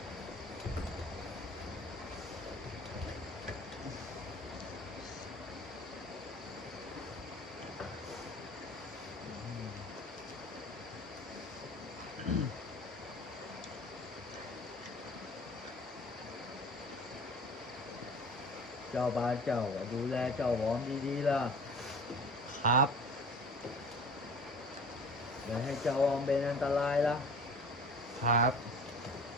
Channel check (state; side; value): normal; both; correlation 0.42